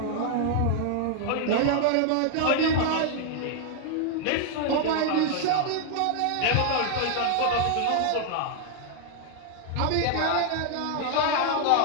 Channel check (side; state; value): both; different; correlation 0.00